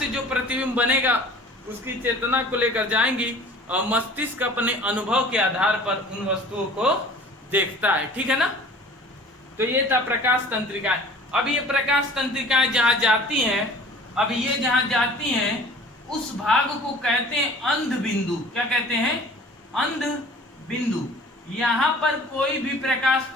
जो प्रतिबिंब बनेगा उसकी चेतना को लेकर जाएंगी, और मस्तिष्क अपने अनुभव के आधार पर उन वस्तुओं को देखता है, ठीक है ना। तो ये था प्रकाश तंत्रिकाएं। अब ये प्रकाश तंत्रिकाएं जहां जाती हैं, अब ये जहां जाती हैं उस भाग को कहते हैं अंध बिंदु। क्या कहते हैं, अंध बिंदु। यहाँ पर कोई भी प्रकाश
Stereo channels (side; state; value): both; normal; correlation 0.46